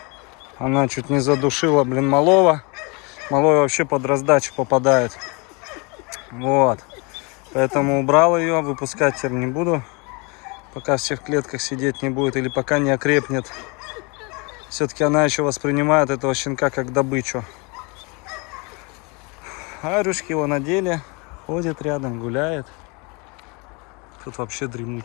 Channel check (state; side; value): quieter; right; 29.7 dB